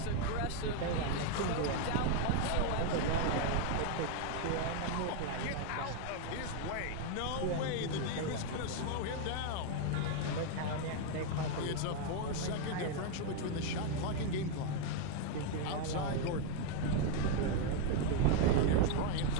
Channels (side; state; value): both; different; correlation 0.01